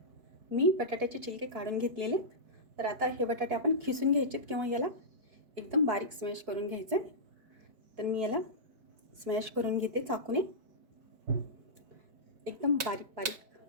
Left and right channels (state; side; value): late; left; 4.6 ms